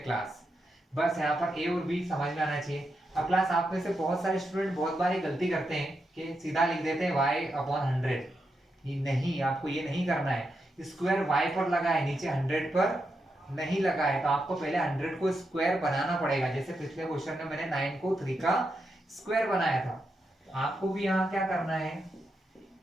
Class बस यहाँ पर a और b समझ में आना चाहिए। अब क्लास आप में से बहुत सारे स्टूडेंट बहुत बार ये गलती करते हैं कि सीधा लिख देते हैं y अपॉन 100। ये नहीं, आपको ये नहीं करना है, स्क्वायर y पर लगा है, नीचे 100 पर नहीं लगा है, तो आपको पहले 100 को स्क्वायर बनाना पड़ेगा। जैसे पिछले क्वेश्चन में मैंने 9 को 3 का स्क्वायर बनाया था, तो आपको भी यहाँ क्या करना है,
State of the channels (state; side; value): normal; both; correlation 0.85